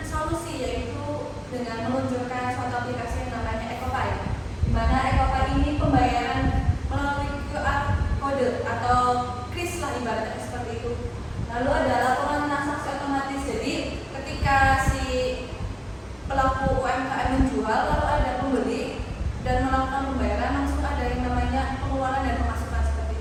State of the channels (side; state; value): both; identical; correlation 1.00